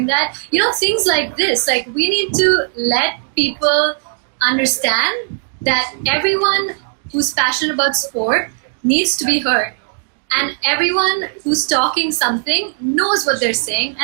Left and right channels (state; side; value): silent; left; digital silence